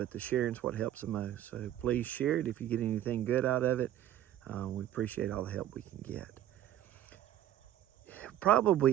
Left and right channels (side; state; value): left; quieter; 12.1 dB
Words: the sharing's what helps the most. So please share it if you get anything good out of it. We appreciate all the help we can get.